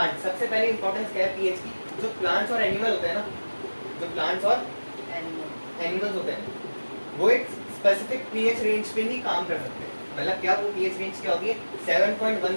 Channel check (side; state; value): both; inverted; correlation -1.00